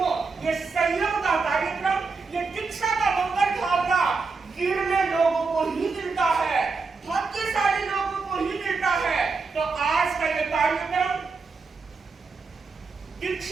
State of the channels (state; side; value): quieter; left; 4.5 dB